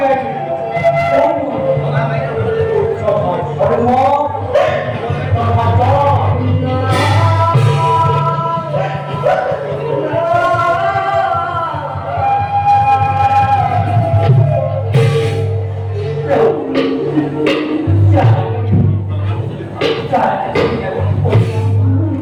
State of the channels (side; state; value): both; identical; correlation 1.00